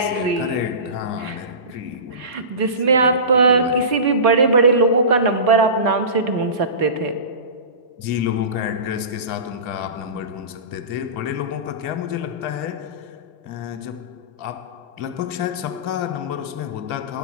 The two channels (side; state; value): left; late; 2.5 ms